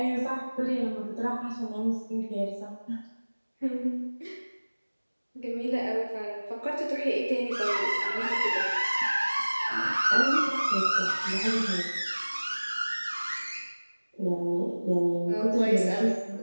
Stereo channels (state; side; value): inverted; both; correlation -1.00